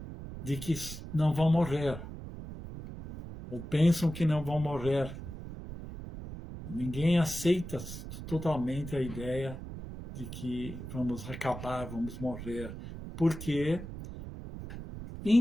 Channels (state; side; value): noise; right; rumble, 10 dB below the sound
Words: de que não vão morrer, ou pensam que não vão morrer. Ninguém aceita totalmente a ideia de que vamos acabar, vamos morrer, porque